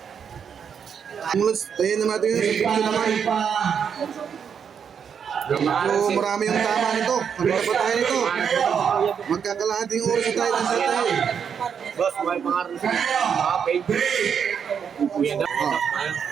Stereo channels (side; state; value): left; quieter; 7.3 dB